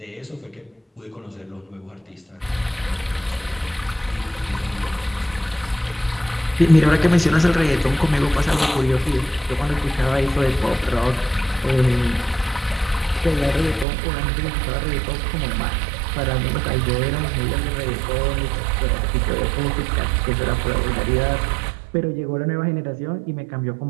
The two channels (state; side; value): drops out; left; at 13.9 s